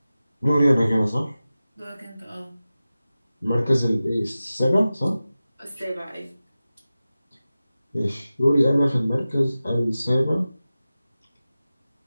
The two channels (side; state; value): both; inverted; correlation -0.95